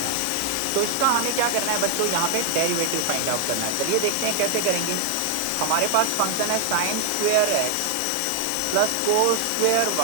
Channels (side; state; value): both; different; correlation 0.00